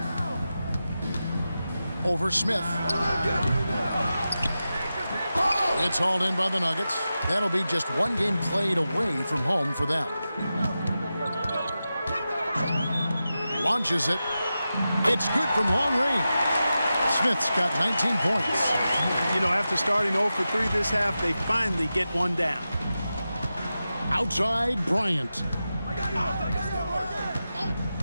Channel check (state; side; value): inverted; both; correlation -0.92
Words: Over Smith. It's hauled in by the Nuggets. That'll be just one game played away from home for them. Launches it. It's good from long range. Smith's got 19 points. You know, after starting 0 for 3 this half, they finally get one down. Outside Bryant.